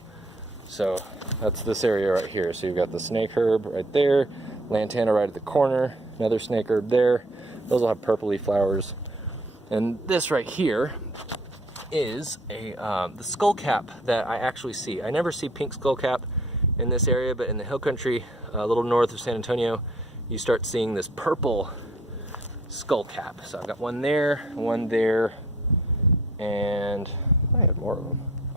So that's this area right here. So you've got the snake herb right there, lantana right at the corner, another snake herb there. Those will have purpley flowers. And this right here is the skullcap that I actually see. I never see pink skullcap in this area, but in the hill country, a little north of San Antonio, you start seeing this purple skullcap. So I've got one there, and I have more of them.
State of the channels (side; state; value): both; normal; correlation 0.57